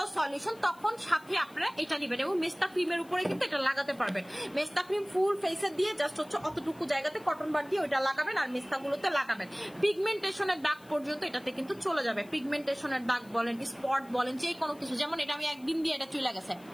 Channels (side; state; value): left; noise; hiss, 26 dB below the sound